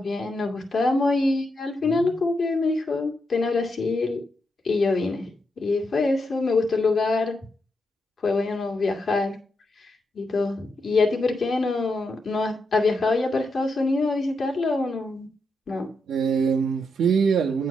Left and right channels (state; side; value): normal; both; correlation 0.83